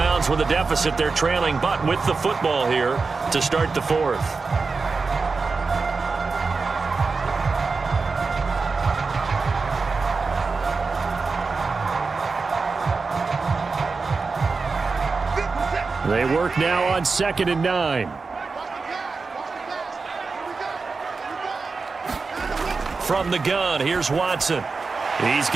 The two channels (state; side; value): quieter; left; 4.4 dB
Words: with a deficit. They're trailing, but with the football here to start the 4th. They work now on 2nd and 9. From the gun, here's Watson. He's